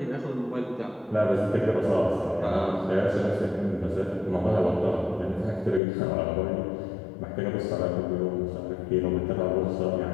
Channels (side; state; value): right; drops out; at 5.8 s